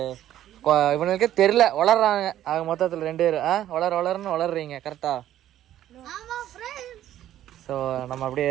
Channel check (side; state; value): left; quieter; 12.2 dB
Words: இவனுக்கு தெரியல, வளர்றாங்க. ஆக மொத்தத்தில் 2 பேர் வளர்ன்னு வளர்றீங்க கரெக்டா? ஸோ நம்ம